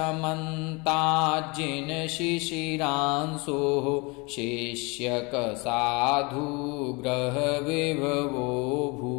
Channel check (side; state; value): right; quieter; 28.0 dB